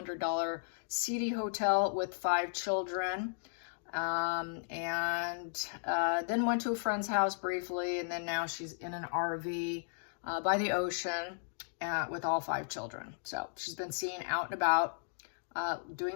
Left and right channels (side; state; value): right; silent; digital silence